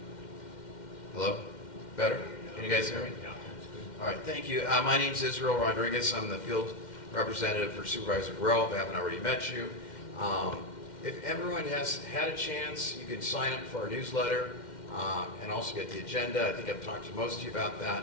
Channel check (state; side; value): late; right; 2.1 ms